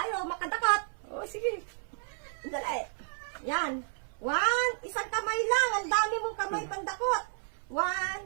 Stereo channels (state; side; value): silent; left; 57 dB below the other